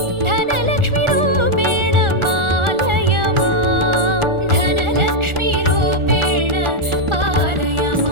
धनलक्ष्मीरूपेण पालय माम् धनलक्ष्मीरूपेण पालय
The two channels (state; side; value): late; left; 1.4 ms